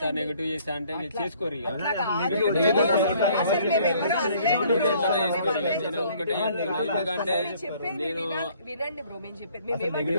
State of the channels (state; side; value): inverted; both; correlation -0.59